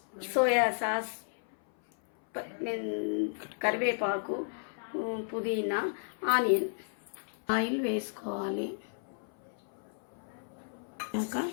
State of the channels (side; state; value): right; silent; 56 dB below the other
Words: సోయా సాస్, కరివేపాకు, పుదీనా, ఆనియన్. ఆయిల్ వేసుకోవాలి. ఇంకా